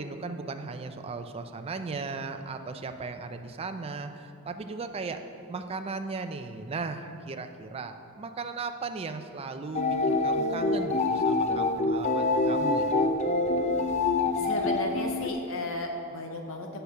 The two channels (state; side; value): normal; both; correlation 0.10